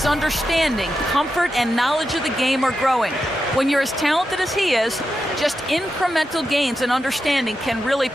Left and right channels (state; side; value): normal; both; correlation 0.88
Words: understanding, comfort, and knowledge of the game are growing. When you're as talented as he is, just incremental gains and understanding can really